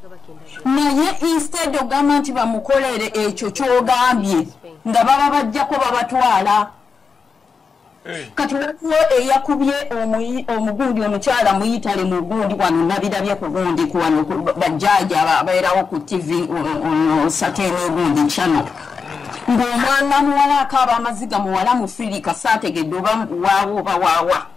naye instead ogamba nti bamukolere ekyo kyogambye nga baba bajjako babatwala kati waliwo eyakubye omugundi omukyala muyitale mu gundi wano nabirabye ku gundi kuwano bajjaaja ababeerawo ku TV Saturday gundi channel ng'omwana muwala akaaba amaziga muwala mufirika saategedde oba waawo oba waawa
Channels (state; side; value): quieter; right; 5.4 dB